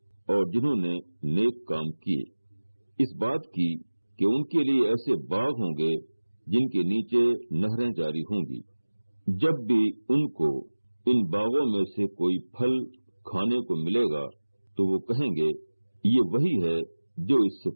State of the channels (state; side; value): inverted; both; correlation -1.00